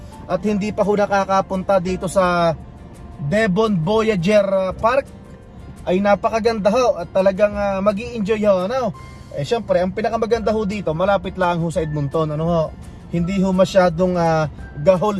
at hindi pa ho nakakapunta dito sa Devon Voyager Park. Ay napakaganda ho at talagang magi-enjoy ho, ano? Syempre, ang pinakamaganda ho dito, malapit lang ho sa Edmonton, ano ho? Hindi ho masyadong gahol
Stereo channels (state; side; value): identical; both; correlation 1.00